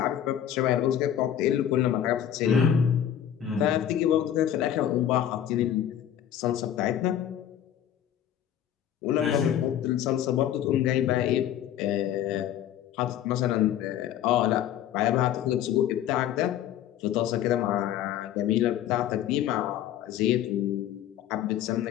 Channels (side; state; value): right; quieter; 10.6 dB